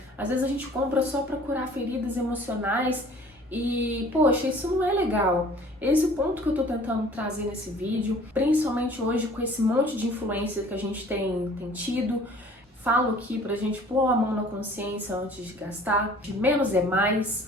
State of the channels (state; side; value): normal; both; correlation 0.50